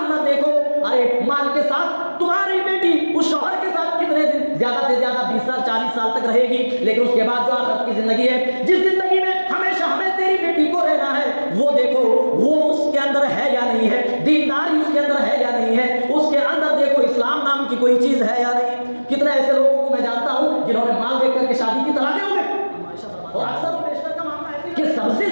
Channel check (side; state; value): both; inverted; correlation -1.00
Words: نہ دیکھو، ارے مال کے ساتھ تمہاری بیٹی اس شوہر کے ساتھ کتنے دن، زیادہ سے زیادہ 20 سال 40 سال تک رہے گی، لیکن اس کے بعد جو آخرت کی زندگی ہے، جس زندگی میں ہمیشہ ہمیں تیری بیٹی کو رہنا ہے، وہ دیکھو وہ اس کے اندر ہے یا نہیں ہے، دینداری اس کے اندر ہے یا نہیں ہے، اس کے اندر دیکھو اسلام نام کی کوئی چیز ہے یا نہیں۔ کتنے ایسے لوگوں کو میں جانتا ہوں جنہوں نے مال دیکھ کر کے شادی کی طلاقیں ہو گئے، اور اکثر و بیشتر کا معاملہ ہے کہ سب سے